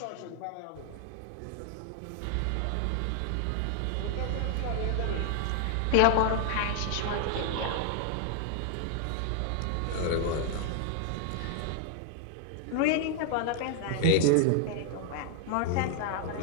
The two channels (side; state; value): both; different; correlation 0.00